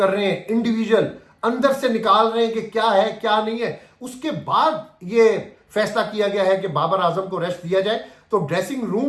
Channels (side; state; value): both; identical; correlation 1.00